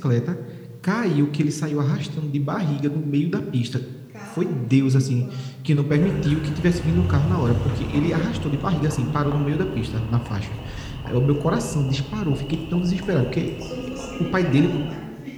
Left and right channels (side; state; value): both; identical; correlation 1.00